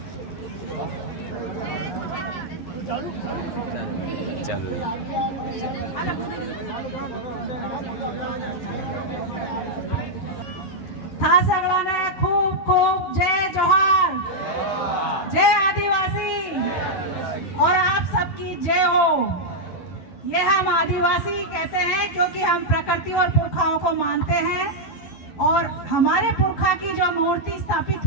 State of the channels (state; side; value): late; right; 12 ms